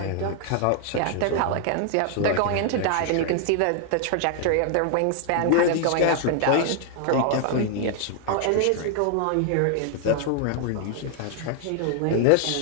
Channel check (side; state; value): both; different; correlation 0.00